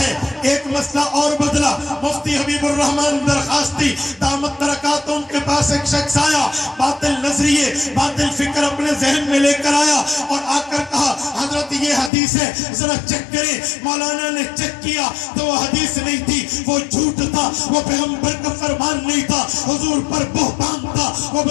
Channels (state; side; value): drops out; right; at 12.1 s